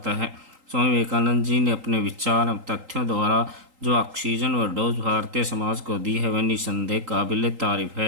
है। स्वामी विवेकानंद जी ने अपने विचार एवं तथ्यों द्वारा जो ऑक्सीजन व डोज भारतीय समाज को दी है वह निसंदेह काबिल तारीफ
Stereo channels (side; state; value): left; late; 3.8 ms